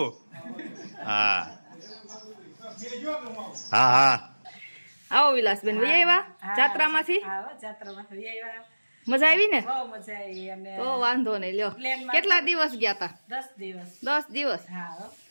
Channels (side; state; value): both; inverted; correlation -1.00